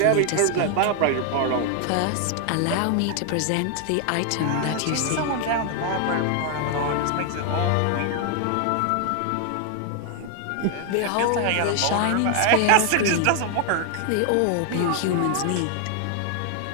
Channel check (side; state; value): both; different; correlation 0.00